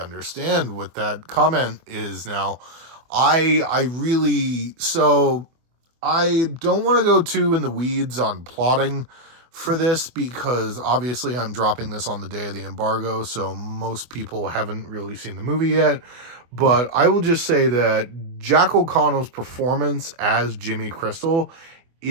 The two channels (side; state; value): left; late; 24 ms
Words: what that comment is now. I don't want to go too in the weeds on plotting for this, because obviously I'm dropping this on the day of the embargo, so most people haven't really seen the movie yet. But I will just say that Jack O'Connell's performance as Jimmy Crystal